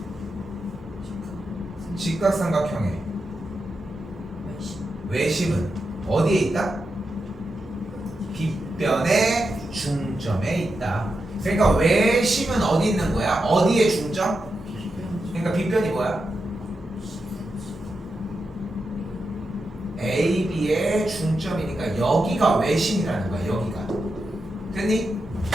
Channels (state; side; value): normal; both; correlation 0.88